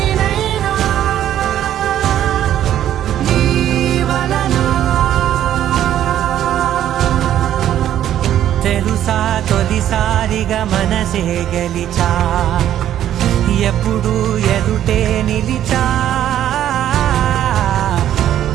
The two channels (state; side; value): quieter; left; 11.3 dB